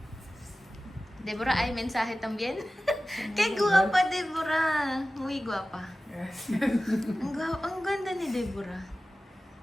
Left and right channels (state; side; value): normal; both; correlation 0.96